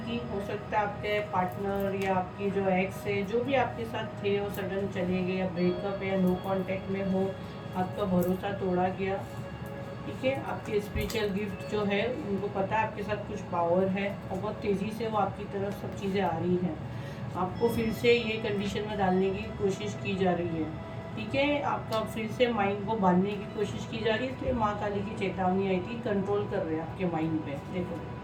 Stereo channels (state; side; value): identical; both; correlation 1.00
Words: हो सकता है आपके पार्टनर या आपकी जो एक्स है, जो भी आपके साथ थे वो सडन चले गए, या ब्रेकअप या नो कांटेक्ट में हो, आपका भरोसा तोड़ा गया। ठीक है, आपके स्पिरिचुअल गिफ्ट जो है उनको पता है आपके साथ कुछ पावर है और बहुत तेज़ी से वो आपकी तरफ सब चीज़ें आ रही हैं। आपको फिर से ये कंडीशन में डालने की कोशिश की जा रही है। ठीक है, आपका फिर से माइंड को बांधने की कोशिश की जा रही है, इसलिए माँ काली की चेतावनी आई थी। कंट्रोल कर रहे हैं आपके माइंड पे। देखो